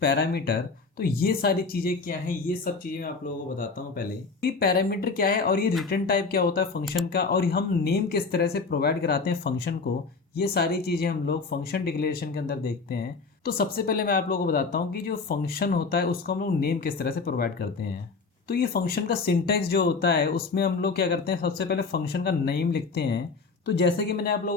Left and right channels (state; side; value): quieter; right; 4.4 dB